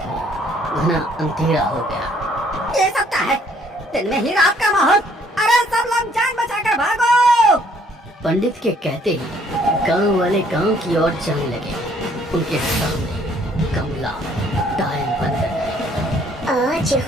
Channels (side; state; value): both; normal; correlation 0.63